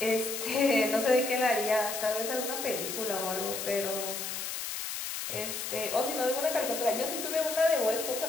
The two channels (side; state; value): left; noise; hiss, 5 dB below the sound